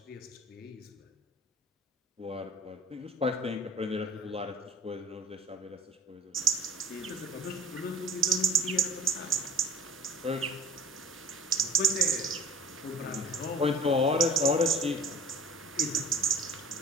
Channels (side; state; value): both; normal; correlation 0.45